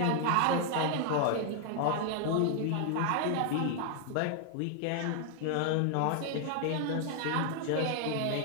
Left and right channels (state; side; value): different; both; correlation 0.00